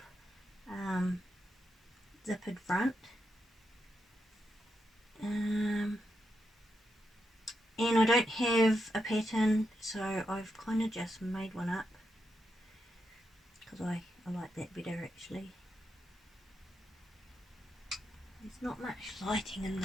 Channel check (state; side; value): normal; both; correlation 0.84